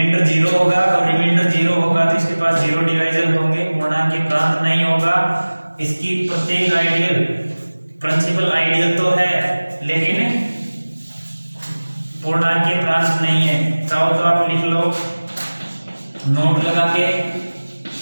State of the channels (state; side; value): inverted; both; correlation -1.00